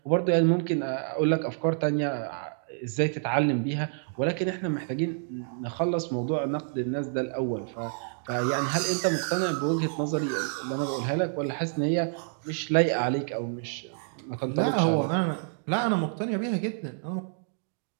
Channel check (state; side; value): silent; left; digital silence